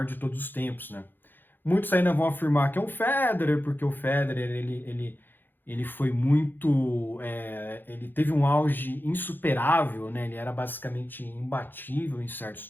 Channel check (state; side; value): late; right; 0.093 ms